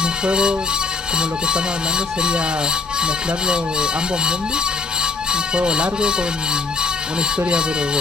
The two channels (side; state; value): right; quieter; 4.1 dB